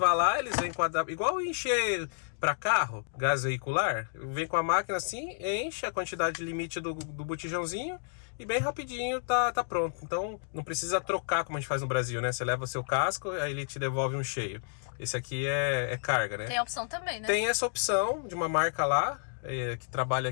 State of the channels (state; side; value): silent; right; digital silence